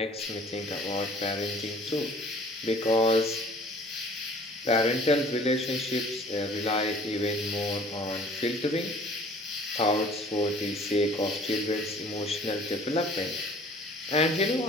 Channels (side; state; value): both; normal; correlation 0.51